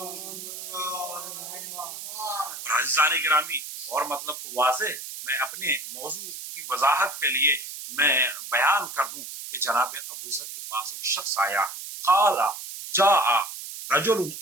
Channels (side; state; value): right; noise; hiss, 9 dB below the sound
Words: عزیزان گرامی، اور مطلب کو واضح میں اپنے موضوع کی وضاحت کے لیے میں بیان کر دوں کہ جناب ابو ذر کے پاس ایک شخص آیا، قال جاء رجل